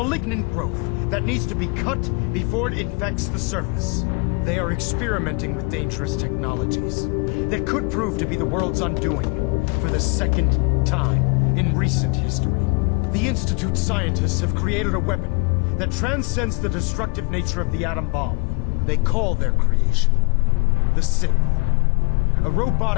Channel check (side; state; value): right; quieter; 30.2 dB